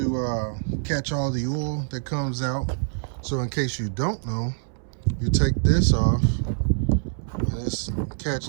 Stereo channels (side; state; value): left; silent; 61 dB below the other